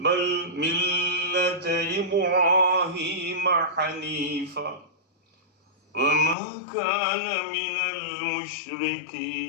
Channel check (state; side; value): drops out; right; at 6.4 s